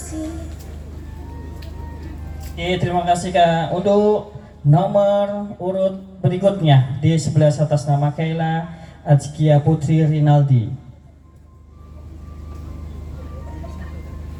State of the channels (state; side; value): identical; both; correlation 1.00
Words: Oke, terima kasih Kak. Untuk nomor urut berikutnya di sebelah atas nama Kayla Azkia Putri Rinaldi.